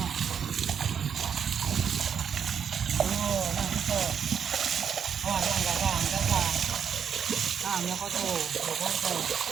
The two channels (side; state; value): left; quieter; 7.6 dB